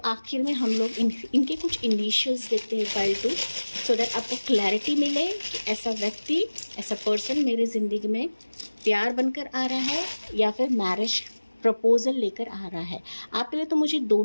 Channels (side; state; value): both; inverted; correlation -1.00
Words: में हम लोग इनके कुछ इनिशियल्स देखते हैं पाइल 2, सो दैट आपको क्लैरिटी मिले कि ऐसा व्यक्ति, ऐसा पर्सन मेरी ज़िंदगी में प्यार बनकर आ रहा है या फिर मैरिज प्रपोजल लेकर आ रहा है। आपके लिए तो मुझे